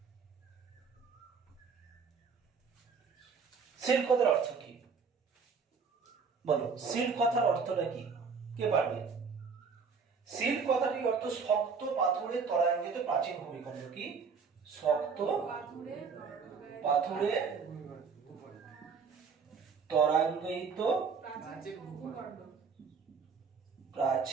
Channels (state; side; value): quieter; left; 5.5 dB